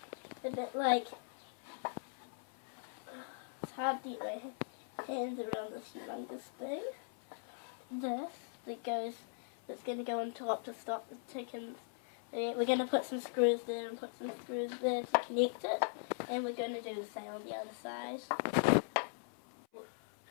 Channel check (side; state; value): right; silent; 51 dB below the other